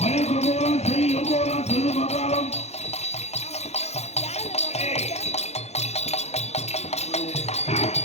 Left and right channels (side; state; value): right; late; 0.31 ms